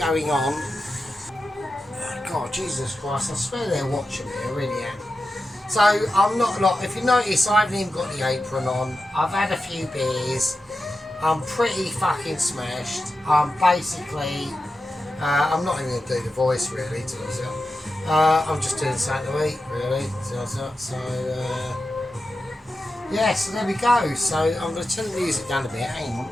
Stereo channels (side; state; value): both; normal; correlation 0.91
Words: on... God, Jesus Christ, I swear they're watching me, I really am. So, I'm not, like, if you notice, I haven't even got the apron on. I've had a few beers. I'm pretty fucking smashed. Basically, I'm not even going to do the voice, really, to myself. I'm just doing something to eat, really. So, yeah, so there we go. So I'm going to turn the music down a bit. Hang on.